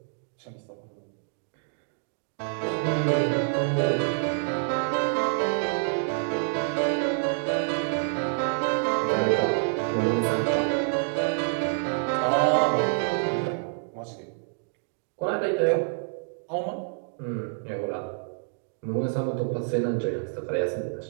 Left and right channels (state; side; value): silent; left; digital silence